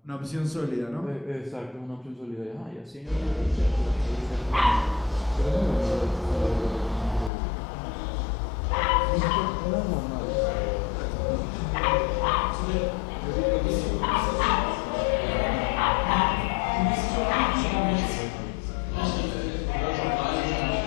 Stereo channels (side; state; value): right; drops out; at 7.3 s